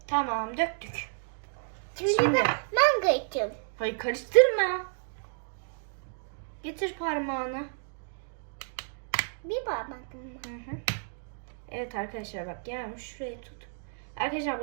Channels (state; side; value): silent; left; digital silence